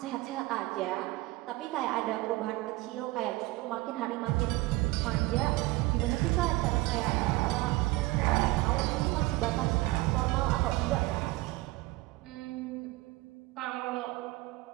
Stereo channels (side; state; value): left; quieter; 20.3 dB